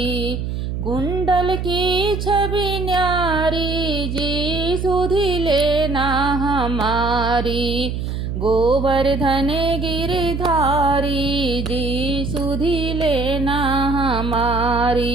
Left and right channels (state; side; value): noise; right; hum, 4 dB below the sound